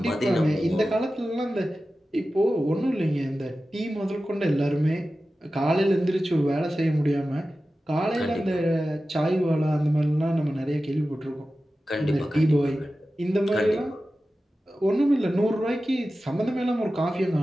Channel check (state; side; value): normal; both; correlation 0.94